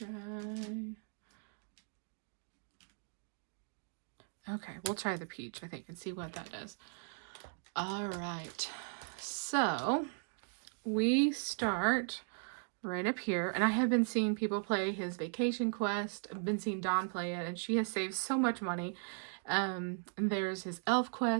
Okay, we'll try the peach, I think, and see what that does. All right, so we start right up here, and I have been seeing people play his vacation quest. I've been seeing Dawn play it, and she has saved so much money. And there's his elf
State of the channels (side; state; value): left; silent; 53 dB below the other